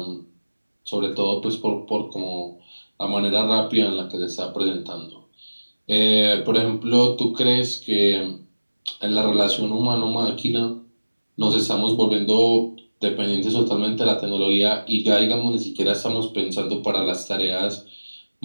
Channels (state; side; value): inverted; both; correlation -1.00